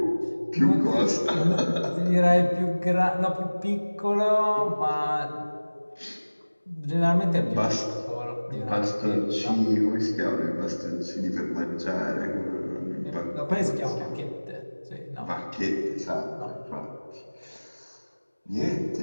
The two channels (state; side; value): inverted; both; correlation -1.00